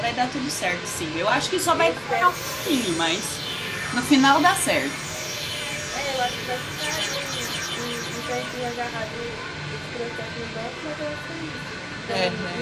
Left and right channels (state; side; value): identical; both; correlation 1.00